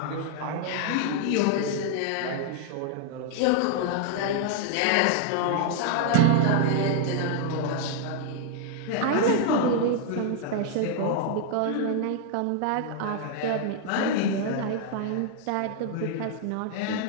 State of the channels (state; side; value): different; both; correlation 0.00